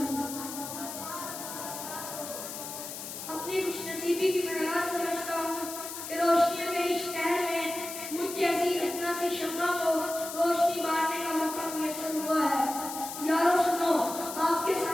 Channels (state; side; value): noise; left; hiss, 8 dB below the sound